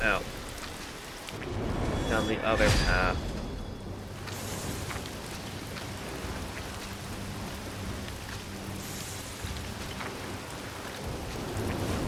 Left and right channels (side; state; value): both; identical; correlation 1.00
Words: Out. Down the other path.